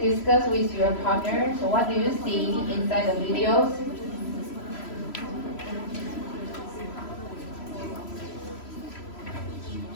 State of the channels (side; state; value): right; late; 3.0 ms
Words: with your partner. So what do you see inside the videos?